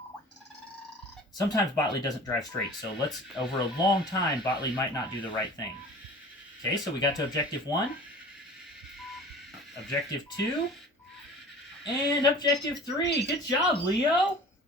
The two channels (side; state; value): both; normal; correlation 0.42